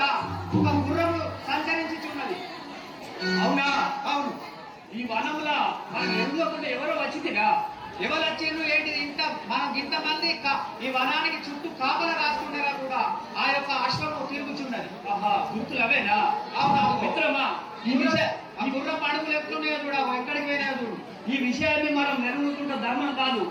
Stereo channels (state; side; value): identical; both; correlation 1.00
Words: ఒక గుర్రము సంచరించుచున్నది. అవునా? అవును. ఈ వనంలో మనం ఎందుకుంటే ఎవరో వచ్చిందిగా, ఎవరు వచ్చిండ్రు ఏంటి? మనం ఇంతమంది ఈ వనానికి చుట్టూ కాపలా కాస్తుండగా కూడా ఆ యొక్క అశ్వము తిరుగుచున్నది. ఆహా, గుర్తులు అవేనా? అవునా మిత్రమా? ఈ గుర్రం అడుగులు ఎట్లున్నాయో చూడ, ఎక్కడికి పోయినా చూడు. ఈ విషయాన్ని మనం నెరవేరుకుంటే ధర్మం కాదు.